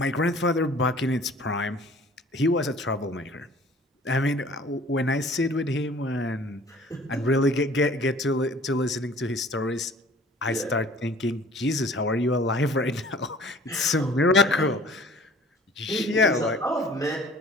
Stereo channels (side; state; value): both; normal; correlation 0.50